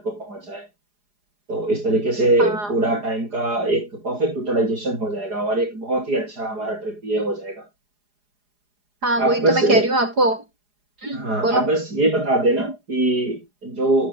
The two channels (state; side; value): late; left; 4.8 ms